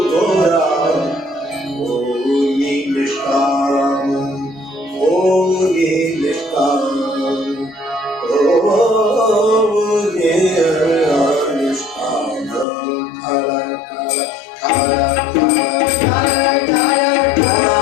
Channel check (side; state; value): right; drops out; at 12.7 s